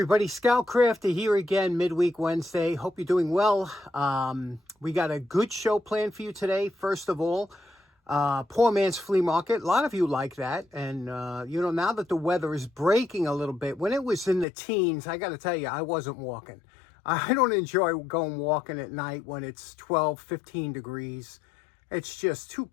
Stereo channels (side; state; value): right; drops out; at 14.5 s